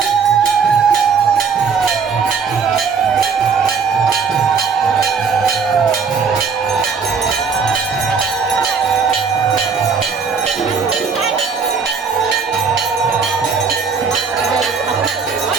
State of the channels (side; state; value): left; quieter; 5.6 dB